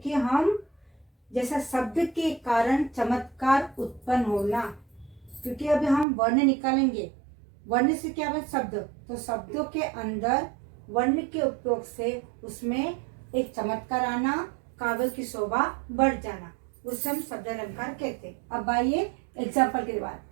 हम जैसा शब्द के कारण चमत्कार उत्पन्न होना, क्योंकि अभी हम वर्ण निकालेंगे। वर्ण से क्या बने? शब्द। तो शब्दों के अंदर वर्ण के उपयोग से उसमें एक चमत्कार आना, काव्य की शोभा बढ़ जाना, उसे हम शब्द अलंकार कहते हैं। अब आइए एग्जाम्पल के बाद।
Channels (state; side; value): drops out; left; at 6.1 s